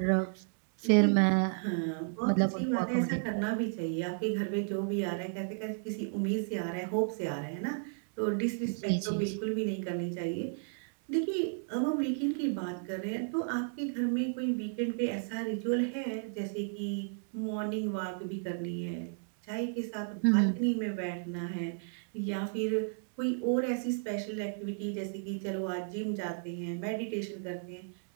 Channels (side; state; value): left; silent; digital silence